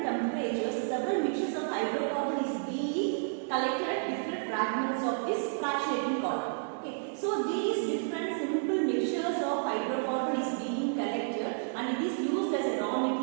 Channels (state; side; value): silent; left; digital silence